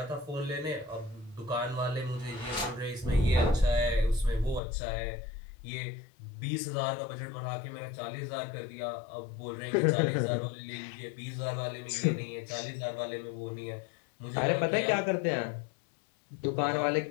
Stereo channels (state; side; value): drops out; right; at 4.6 s